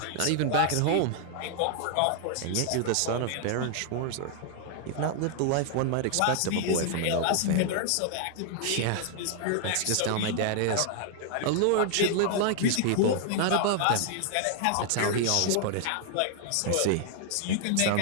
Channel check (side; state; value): both; different; correlation 0.00